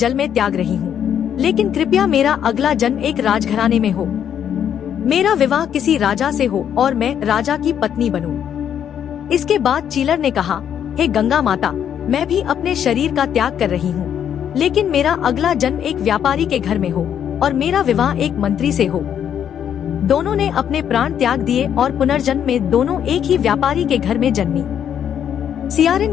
में त्याग रही हूँ, लेकिन कृपया मेरा अगला जन्म एक राजघराने में हो। मेरा विवाह किसी राजा से हो और मैं राजा की पत्नी बनूं। इसके बाद चीलर ने कहा, हे गंगा माता, मैं भी अपने शरीर का त्याग कर रही हूँ, लेकिन मेरा अगला जन्म एक व्यापारी के घर में हो और मेरा विवाह एक मंत्री से हो। दोनों ने अपने प्राण त्याग दिए और पुनर्जन्म में दोनों एक ही व्यापारी के घर में जन्मी।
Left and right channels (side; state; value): right; quieter; 9.1 dB